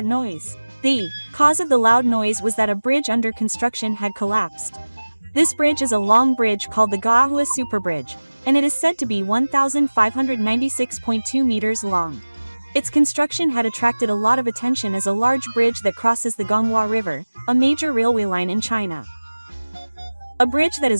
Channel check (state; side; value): inverted; both; correlation -1.00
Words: noise? The cause of the loud noise was that a bridge under construction had collapsed. This bridge is a long bridge called the Gaohui Super Bridge, and it is said to be 1,596.2 meters long. Its construction had attracted a lot of attention as a large bridge that crosses the Gonghua River, a major railway line in China. A bridge that